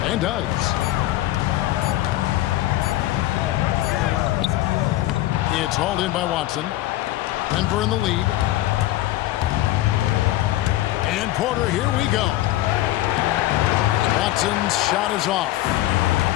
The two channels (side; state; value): right; quieter; 15.5 dB